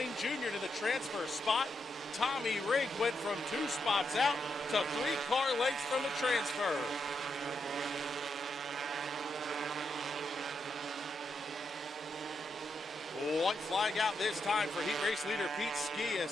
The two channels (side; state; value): both; normal; correlation 0.82